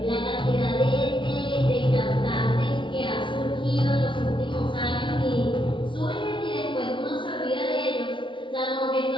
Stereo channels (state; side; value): late; right; 0.24 ms